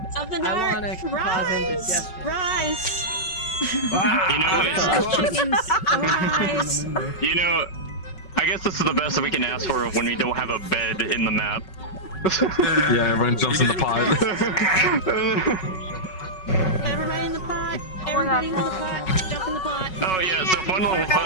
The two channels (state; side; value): late; right; 5.4 ms